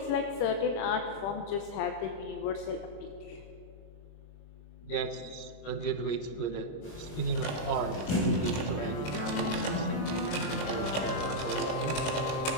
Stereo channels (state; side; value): late; right; 26 ms